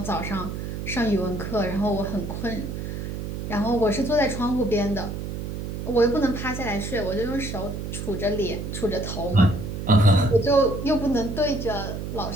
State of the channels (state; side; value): noise; right; hum, 5 dB below the sound